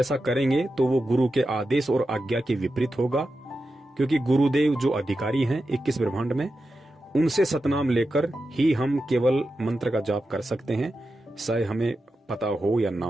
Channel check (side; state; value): both; normal; correlation 0.90